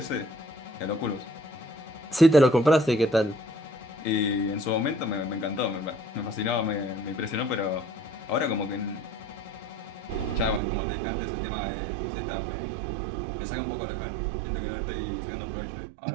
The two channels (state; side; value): drops out; left; at 10.6 s